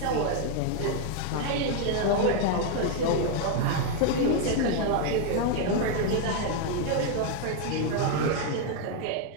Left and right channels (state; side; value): different; both; correlation 0.00